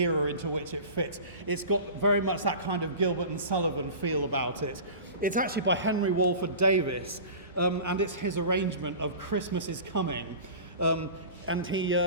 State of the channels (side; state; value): both; inverted; correlation -0.36